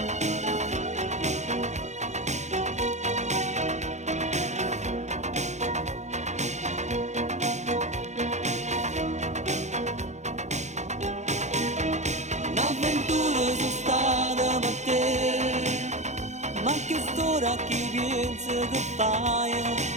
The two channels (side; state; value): left; late; 0.33 ms